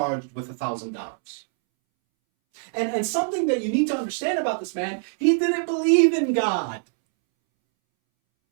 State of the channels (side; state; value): left; silent; 63 dB below the other